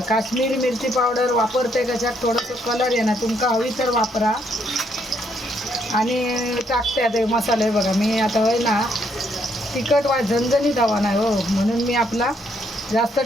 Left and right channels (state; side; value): normal; both; correlation 0.72